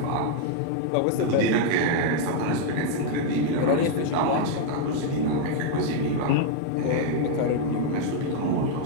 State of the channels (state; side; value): different; both; correlation 0.00